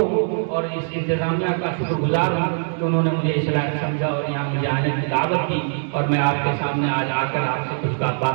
ہوں اور اس انتظامیہ کا شکر گزار ہوں کہ انہوں نے مجھے اس لائق سمجھا اور یہاں مجھے آنے کی دعوت دی اور میں آپ کے سامنے آج آ کر آپ سے کچھ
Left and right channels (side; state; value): left; silent; 60 dB below the other